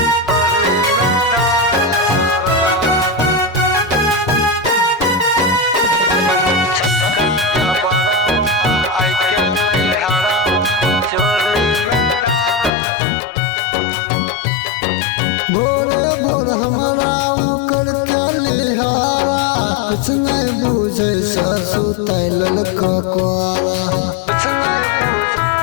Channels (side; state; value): right; drops out; at 12.7 s